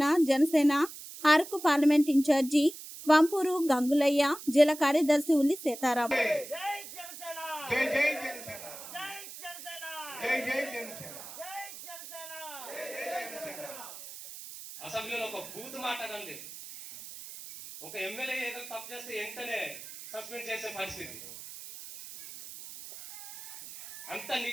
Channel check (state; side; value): noise; right; hiss, 13 dB below the sound